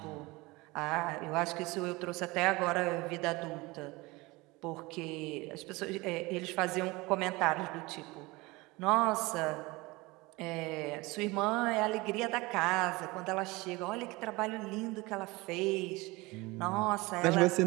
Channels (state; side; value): quieter; left; 22.8 dB